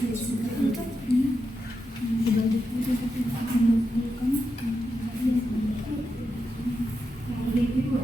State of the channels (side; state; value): both; normal; correlation 0.87